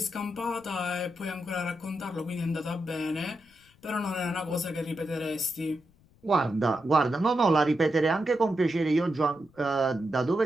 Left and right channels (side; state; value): left; noise; rumble, 30 dB below the sound